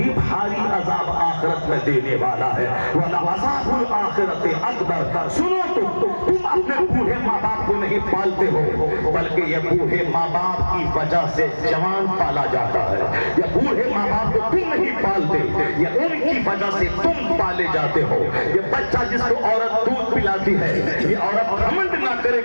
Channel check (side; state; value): both; inverted; correlation -1.00